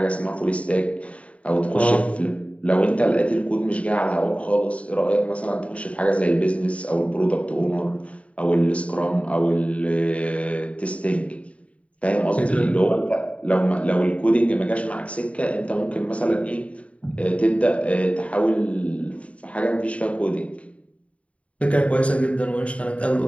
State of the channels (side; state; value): right; late; 0.064 ms